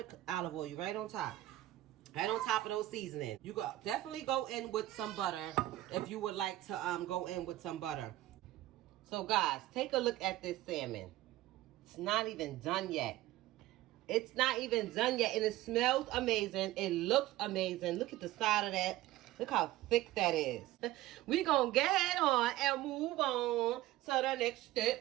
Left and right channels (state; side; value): quieter; left; 16.0 dB